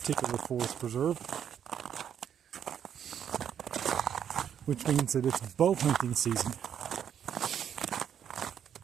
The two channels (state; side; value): quieter; left; 8.9 dB